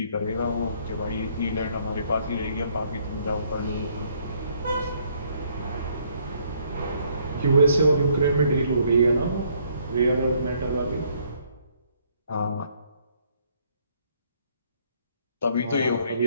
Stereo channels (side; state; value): both; inverted; correlation -0.66